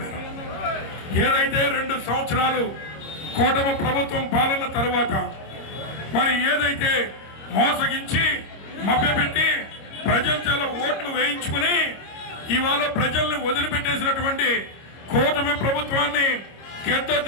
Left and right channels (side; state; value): right; late; 26 ms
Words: ఏదైతే 2 సంవత్సరాలు కూటమి ప్రభుత్వం పాలన తరువాత మరి ఏదైతే మోసగించి మభ్యపెట్టి ప్రజల చేత ఓట్లు వేయించుకుని ఇవాళ ప్రజల్ని వదిలిపెట్టేసినటువంటి కూటమి ప్రభుత్వాన్ని